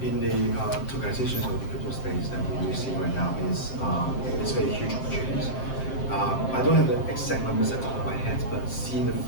tokenization of the crypto space that we see right now is very huge opportunities. I don't have the exact numbers at the top of my head, but seeing the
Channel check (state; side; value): late; right; 7.6 ms